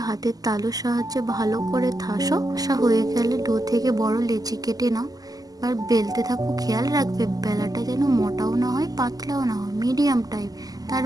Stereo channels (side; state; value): left; late; 0.18 ms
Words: হাতের তালুর সাহায্যে ভালো করে থাসো। হয়ে গেলে ডো থেকে বড় লেচি কেটে নাও। আর বেলতে থাকো, খেয়াল রাখবে বেলাটা যেন মোটাও না হয় পাতলাও না হয়, মিডিয়াম টাইপ।